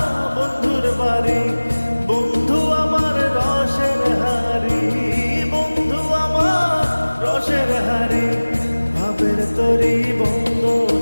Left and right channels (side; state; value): both; inverted; correlation -1.00